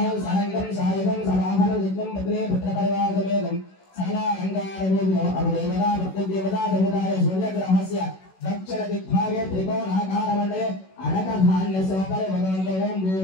సాయంత్రం సాయకం సమాహన జిత్వం పత్రే పుత్ర పరివార సమేతం సకల అంగారవేదో అభిదేవతా देवता देवताय सूर्यग्रहस्य दक्षिण दिग्भागे त्रिकोणाकारमण्डले अनकधान्यसोपरि भगवन्तो ओं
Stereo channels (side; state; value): right; late; 16 ms